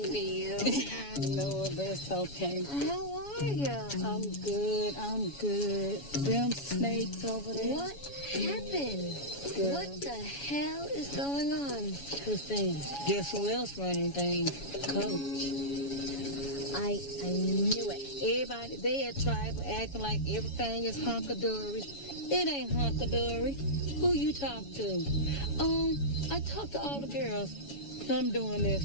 be you. I know it, but it's okay. How are you? I'm good. Them snakes over there. What happened? Girl. What the hell is going on? Christine, guess who else running things? Coach. I knew it. Everybody, they at tribal acting like everything is hunky-dory. It ain't hunky-dory. Who you talk to? I talked to all the girls. I'm doing this.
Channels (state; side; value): late; right; 7.1 ms